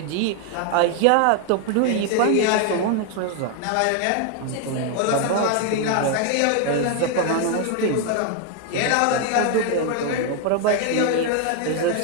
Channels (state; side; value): different; both; correlation 0.01